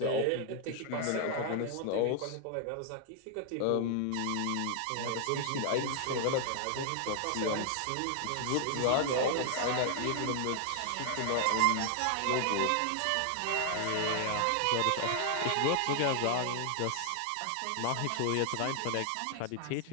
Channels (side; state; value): both; different; correlation 0.00